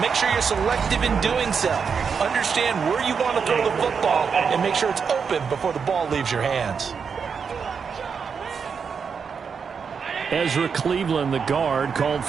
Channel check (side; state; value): left; quieter; 6.1 dB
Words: make sure you're selective in doing so. Understand where you want to throw the football and make sure it's open before the ball leaves your hands. Ezra Cleveland, the guard, called